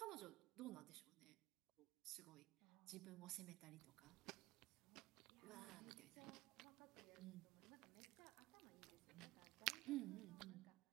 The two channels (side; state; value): left; quieter; 18.8 dB